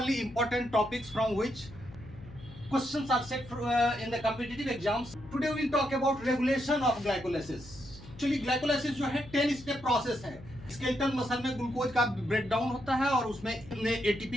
important topics from which questions are set in the competitive exams. Today we'll talk about regulation of glycolysis. Actually glycolysis जो है 10 step process है. Skeletal muscle में glucose का break down होता है और उसमें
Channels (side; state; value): left; noise; hum, 17 dB below the sound